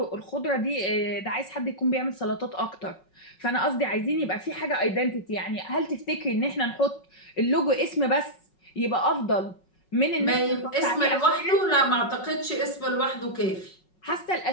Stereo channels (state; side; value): late; right; 5.4 ms